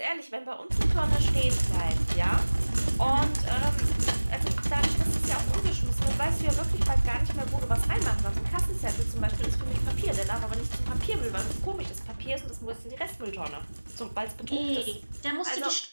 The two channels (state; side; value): inverted; both; correlation -1.00